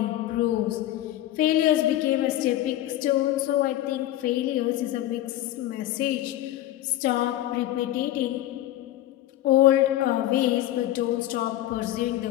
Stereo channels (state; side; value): quieter; right; 14.1 dB